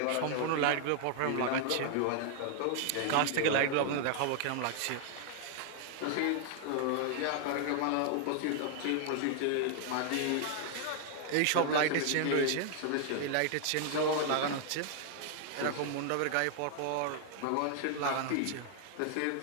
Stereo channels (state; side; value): different; both; correlation 0.00